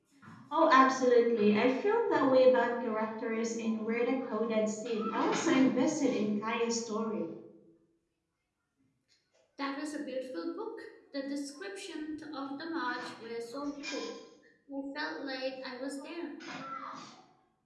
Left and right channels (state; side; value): identical; both; correlation 1.00